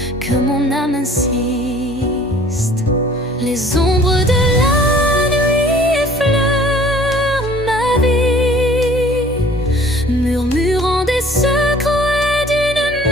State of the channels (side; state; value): both; normal; correlation 0.52